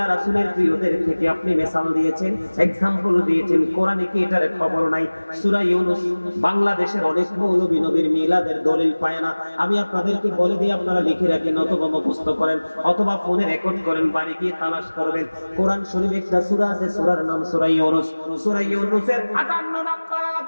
রাসূলের প্রিয়দের থেকে আপনি মিসাল দিয়েছেন, এক্সাম্পল দিয়েছেন, কোরআনে কি এটার খবর নাই? সূরা ইউনূস বাংলাদেশের অনেক মৌলবী নবীর মিলাদের দলিল পায় না। আমি আপনাদেরকে বলে দিই, আপনারা লিখে রাখেন অথবা মুখস্থ করেন অথবা ফোনে রেকর্ড করেন, বাড়ি গিয়ে তালাশ করবেন। কোরআন শরীফে একটা সূরা আছে, সূরার নাম সূরা ইউনূস। সূরা ইউনূসের ৫৮ নম্বর আয়াত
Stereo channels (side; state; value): both; inverted; correlation -1.00